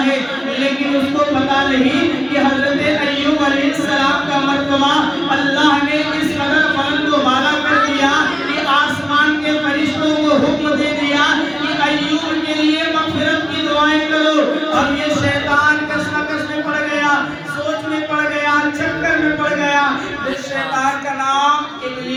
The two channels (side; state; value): both; identical; correlation 1.00